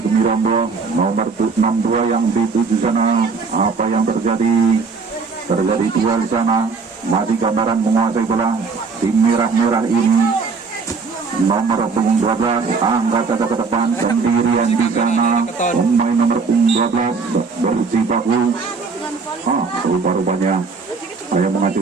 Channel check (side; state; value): left; quieter; 4.7 dB